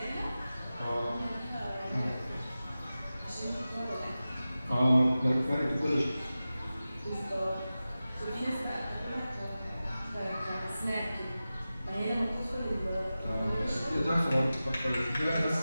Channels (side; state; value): both; inverted; correlation -0.95